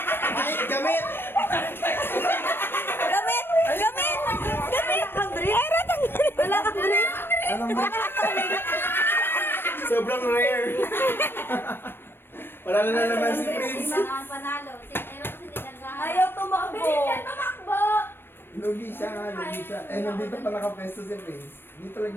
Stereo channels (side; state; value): right; late; 0.10 ms